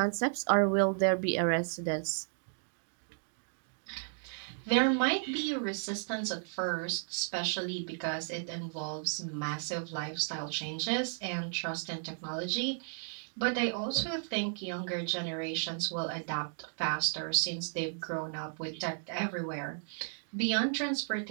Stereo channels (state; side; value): silent; left; digital silence